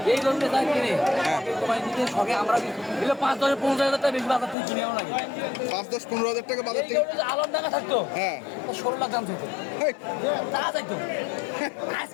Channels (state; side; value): drops out; right; at 4.5 s